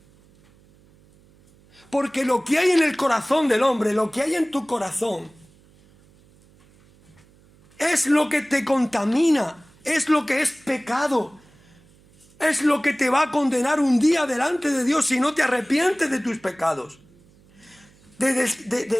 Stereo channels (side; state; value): right; noise; hum, 29 dB below the sound